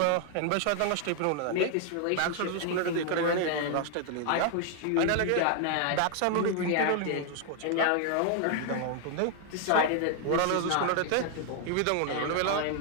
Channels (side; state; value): both; different; correlation 0.00